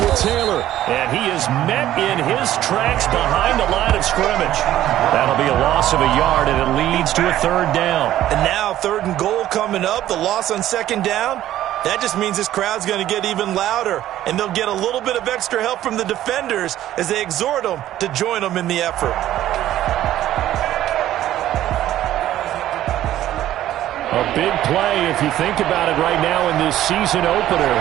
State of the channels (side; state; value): left; quieter; 13.1 dB